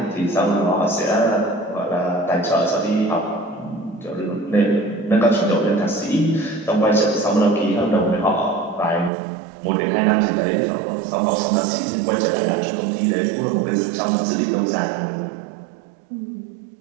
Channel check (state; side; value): drops out; left; at 9.1 s